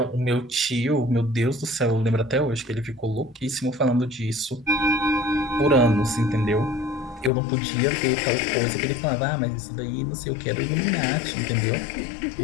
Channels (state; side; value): drops out; right; at 7.3 s